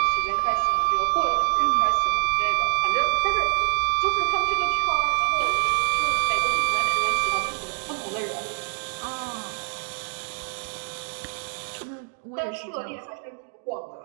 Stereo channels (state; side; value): silent; left; digital silence